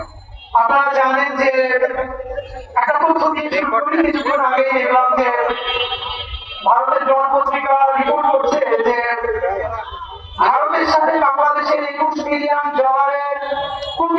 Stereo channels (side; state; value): both; identical; correlation 1.00